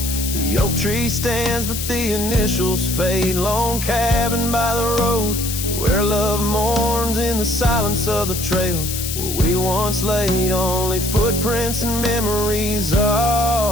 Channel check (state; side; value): noise; left; hiss, 5 dB below the sound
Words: The oak tree stands, but the initials fade. Lone cabin by the road, where love mourns in the silence of the trails where we once laid. Only footprints and memories